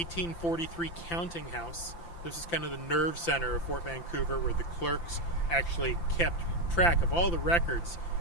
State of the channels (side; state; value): right; late; 5.9 ms